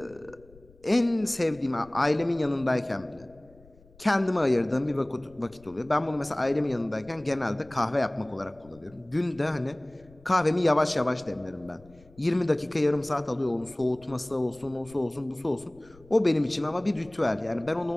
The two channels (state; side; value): noise; left; rumble, 25 dB below the sound